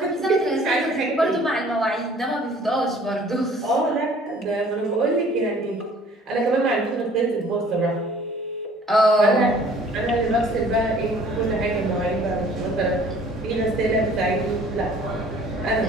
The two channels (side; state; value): both; normal; correlation 0.53